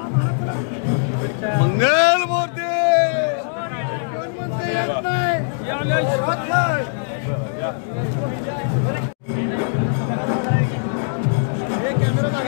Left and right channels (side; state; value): right; silent; digital silence